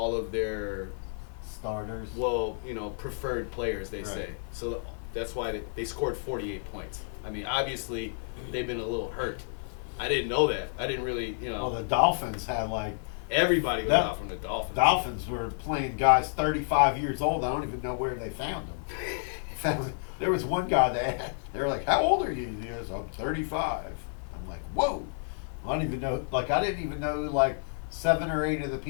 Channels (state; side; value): silent; right; digital silence